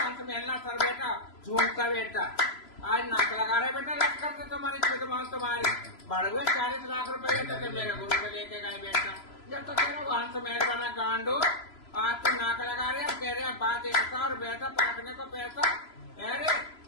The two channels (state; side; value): late; right; 3.0 ms